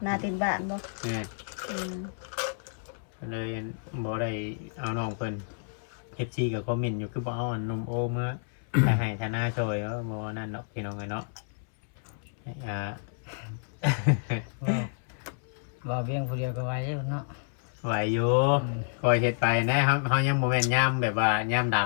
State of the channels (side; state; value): right; silent; 58 dB below the other